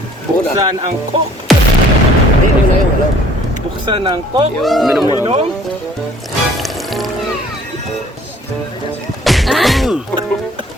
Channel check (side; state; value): both; normal; correlation 0.57